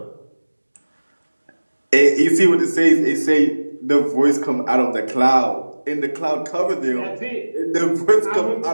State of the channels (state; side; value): inverted; both; correlation -1.00